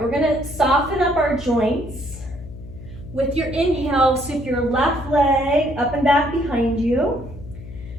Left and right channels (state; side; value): noise; left; hum, 14 dB below the sound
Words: we're gonna soften up our joints. With your inhale, sweep your left leg up and back behind you.